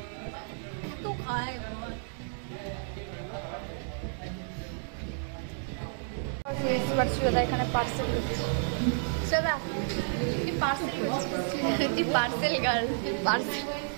এত খায় এবার সুদা এখানে পার্সেল করছি। সুদা তুই পার্সেল করছিস? তুই পার্সেল গার্ল, পার্সেল।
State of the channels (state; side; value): silent; left; digital silence